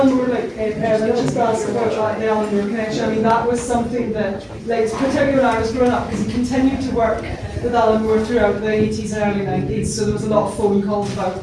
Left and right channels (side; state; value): both; identical; correlation 1.00